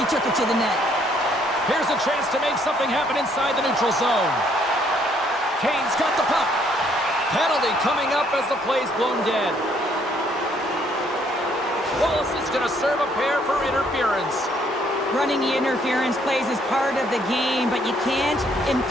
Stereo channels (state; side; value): normal; both; correlation 0.67